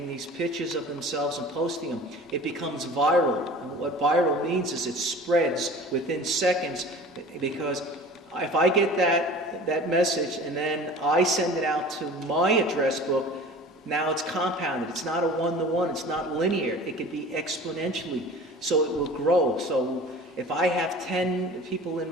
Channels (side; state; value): both; normal; correlation 0.41